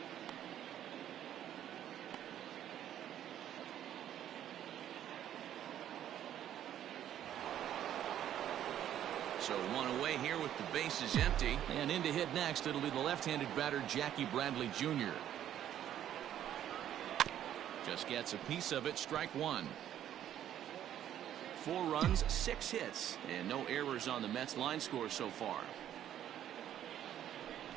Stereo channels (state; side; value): quieter; left; 11.0 dB